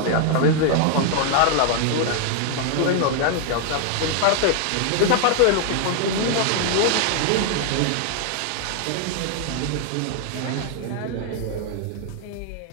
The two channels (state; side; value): different; both; correlation 0.00